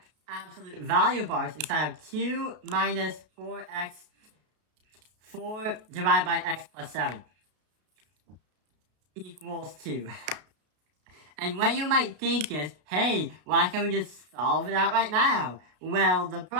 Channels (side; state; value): left; late; 33 ms